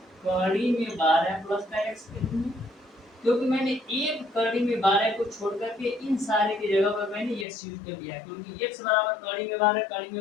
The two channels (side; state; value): right; drops out; at 7.5 s